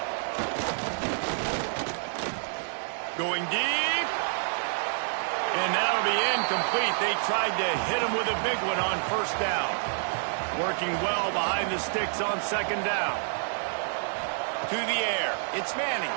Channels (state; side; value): silent; left; digital silence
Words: Going deep. And that'll be incomplete. They tried to hit him with a big one on 1st down. Working well behind the sticks on 2nd down. To the air. It's Manning.